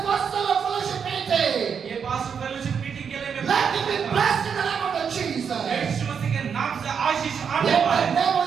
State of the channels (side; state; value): left; quieter; 6.8 dB